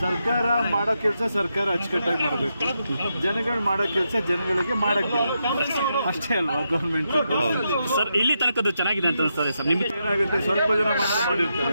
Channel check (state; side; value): inverted; both; correlation -0.84